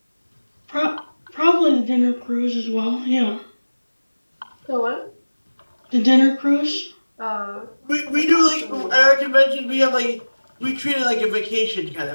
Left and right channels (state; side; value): inverted; both; correlation -1.00